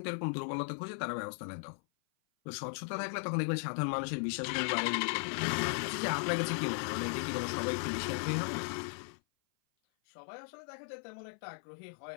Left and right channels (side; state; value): right; silent; 53 dB below the other